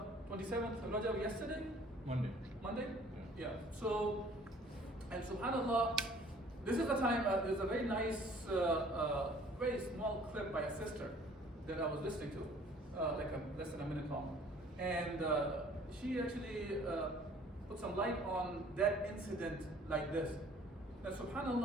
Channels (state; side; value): normal; both; correlation 0.54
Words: 27th of Rajab yesterday? Monday? Yeah. So, and subhanAllah, this is the time, there's a very nice, very small clip by a sister that I was listening to. less than a minute long. And she actually put some light on that incident like this. Now,